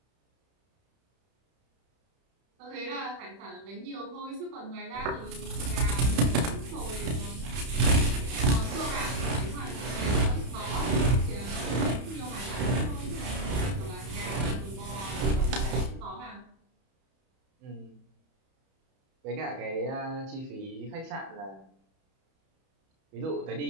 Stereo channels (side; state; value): left; late; 31 ms